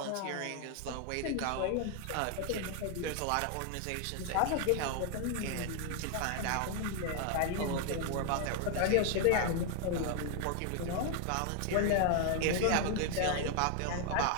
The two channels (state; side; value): different; both; correlation 0.00